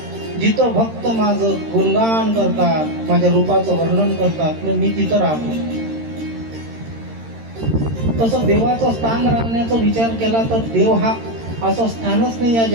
जिथं भक्त माझं गुणगान करतात, माझ्या रूपाचं वर्णन करतात, मग मी तिथं राहतो. तसं देवाचं स्थान राहण्याचा विचार केला तर देव हा असं स्थानच नाही या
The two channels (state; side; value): late; left; 13 ms